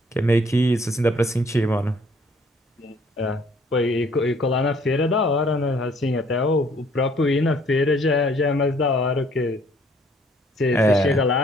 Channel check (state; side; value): normal; both; correlation 0.61